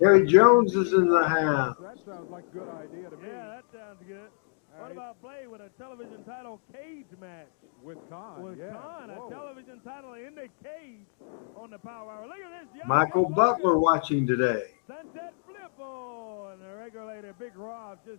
Jones is in the house. That sounds like a good idea to me. Yeah, that sounds good. What about Blade with a television title cage match? With Khan, With yeah. Khan, a Whoa. television title in the cage on the Power Hour. Look at this. Young Michael Young Butler Logan. watching today. Sunset flip on the regulator. Big Rob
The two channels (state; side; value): silent; right; digital silence